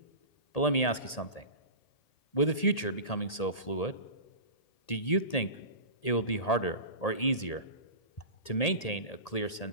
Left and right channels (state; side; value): late; right; 1.8 ms